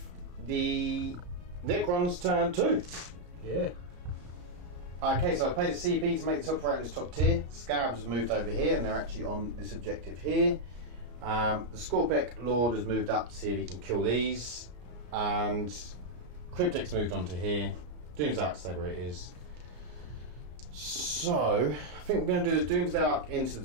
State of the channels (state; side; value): late; left; 34 ms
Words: the Necrons turn 2. Yeah. Okay, so I paid a CP to make the top right in this top tier. Scarabs have moved over here and they're actually on this objective here. The Scorpec Lord has moved up to see if he can kill these. And Cryptic's moved on to here. Doomsday Arc, stay where it is. So, I think we're going to do the Doomsday Arc into